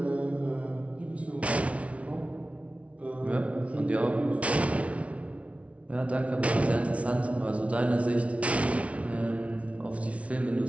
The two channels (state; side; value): late; left; 0.064 ms